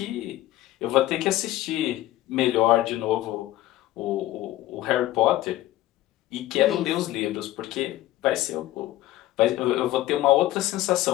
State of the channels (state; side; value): quieter; right; 15.5 dB